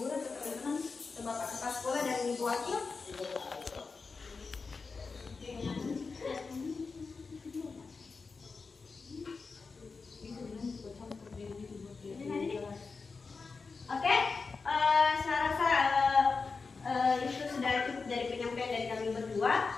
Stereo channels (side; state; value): right; quieter; 4.5 dB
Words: guru atau teman-teman, atau Bapak kepala sekolah dan Ibu wakil. Oke, saya rasa itu sudah cukup dari penyampaian dari kami berdua.